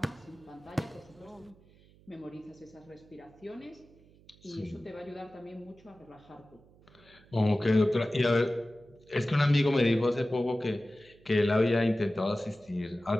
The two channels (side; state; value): right; noise; hum, 27 dB below the sound